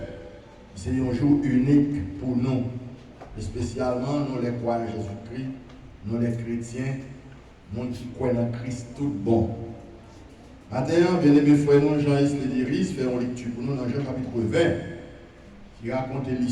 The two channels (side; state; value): both; identical; correlation 1.00